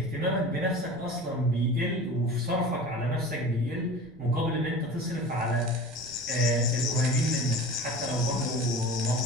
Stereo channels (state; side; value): noise; left; rumble, 24 dB below the sound